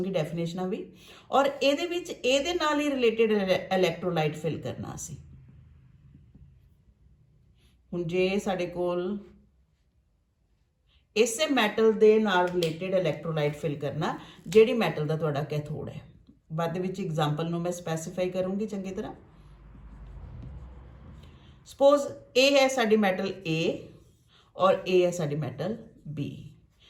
ਡੈਫੀਨੇਸ਼ਨਾਂ ਵੀ। ਔਰ ਇਹਦੇ ਵਿੱਚ ਇਹਦੇ ਨਾਲ ਹੀ ਰਿਲੇਟਡ ਇਲੈਕਟ੍ਰੋਲਾਈਟ ਫਿਲ ਕਰਨਾ ਅਸੀਂ। ਹੁਣ ਜੇ ਸਾਡੇ ਕੋਲ ਇਸੇ ਮੈਟਲ ਦੇ ਨਾਲ ਰਿਲੇਟਡ ਇਲੈਕਟ੍ਰੋਲਾਈਟ ਫਿਲ ਕਰਨਾ ਜਿਹੜੀ ਮੈਟਲ ਦਾ ਤੁਹਾਡਾ ਕੈਥੋਡ ਹੈ, ਬਾਅਦ ਦੇ ਵਿੱਚ ਐਗਜ਼ਾਮਪਲ ਨੂੰ ਮੈਂ ਸਪੈਸੀਫਾਈ ਕਰੂੰਗੀ ਚੰਗੀ ਤਰ੍ਹਾਂ। ਸਪੋਜ਼ ਇਹ ਹੈ ਸਾਡੀ ਮੈਟਲ A ਔਰ ਇਹ ਹੈ ਸਾਡੀ ਮੈਟਲ B,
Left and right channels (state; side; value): identical; both; correlation 1.00